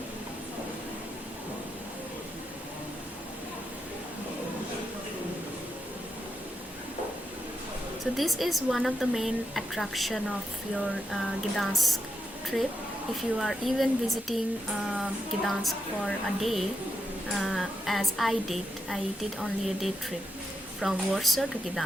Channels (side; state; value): both; normal; correlation 0.83